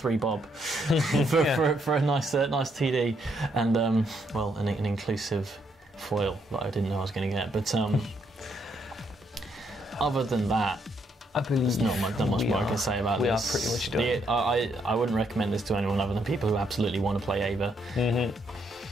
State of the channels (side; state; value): both; normal; correlation 0.74